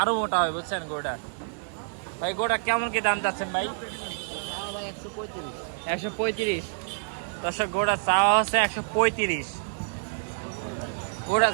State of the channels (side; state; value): left; silent; digital silence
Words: মোটা হবে বুঝছেন গোটা। ভাই গোটা কেমন কি দাম চাচ্ছেন ভাই? 135। দর্শক গোটা চাওয়া হচ্ছে 135। গোটা